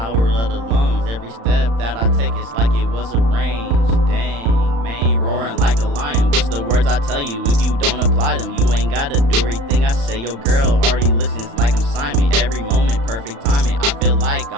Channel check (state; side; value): late; left; 35 ms